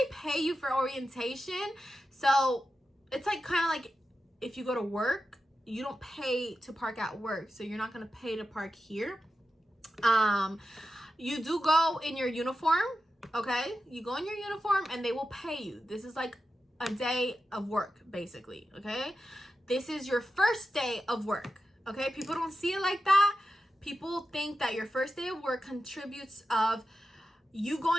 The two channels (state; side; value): normal; both; correlation 0.90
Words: pay you for orientation. So it's like kind of like if you go to work, you don't pay to park at work, so you're not going to pay to park here. You do go in your uniform, okay? You go in your uniform and they will pay you. This is like a day of work, basically, okay? This is your first day of work, okay? People don't see it like that. People think that your first day of work contributes of you